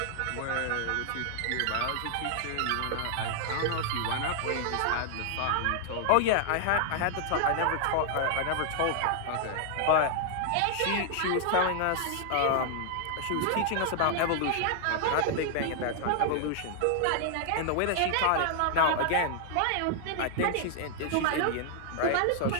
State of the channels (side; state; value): both; different; correlation 0.00